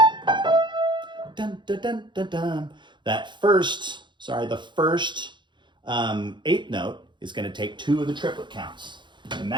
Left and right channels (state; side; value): late; left; 0.23 ms